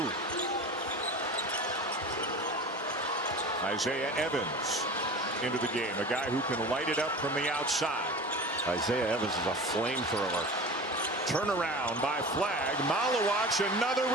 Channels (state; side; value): normal; both; correlation 0.34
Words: Isaiah Evans into the game. A guy who can light it up from the outside. Isaiah Evans is a flamethrower. Turnaround by Flagg. Malawach, another